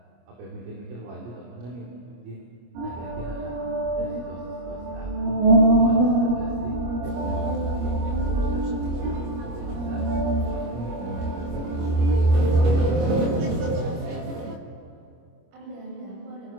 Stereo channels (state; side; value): late; left; 25 ms